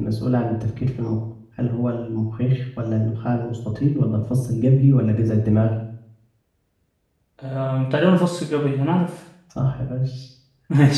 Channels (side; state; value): both; identical; correlation 1.00